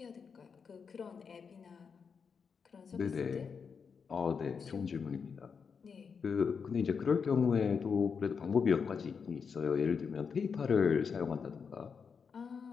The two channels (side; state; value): right; quieter; 6.0 dB